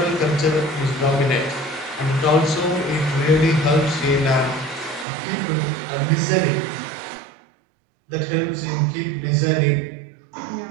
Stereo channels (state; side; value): drops out; left; at 5.1 s